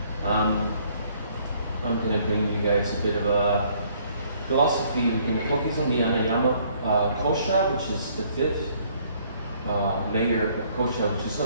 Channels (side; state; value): both; inverted; correlation -0.63